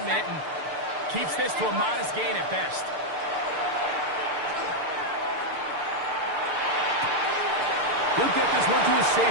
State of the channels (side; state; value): left; late; 6.8 ms